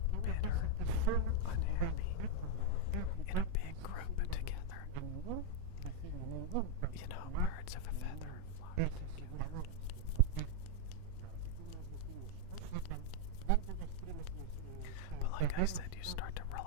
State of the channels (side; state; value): both; different; correlation 0.00